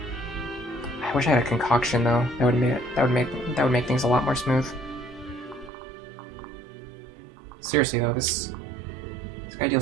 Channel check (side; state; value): left; drops out; at 5.7 s